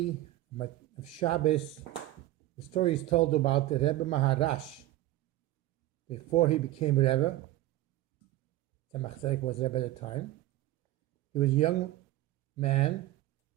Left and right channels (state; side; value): quieter; left; 15.7 dB